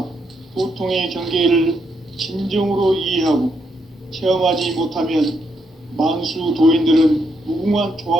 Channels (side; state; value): both; normal; correlation 0.78